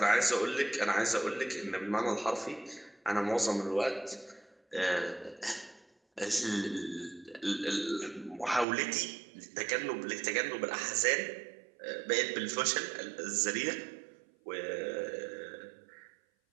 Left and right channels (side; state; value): left; drops out; at 8.7 s